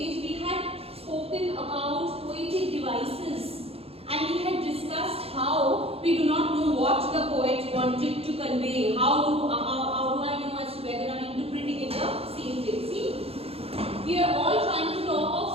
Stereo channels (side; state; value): left; late; 0.29 ms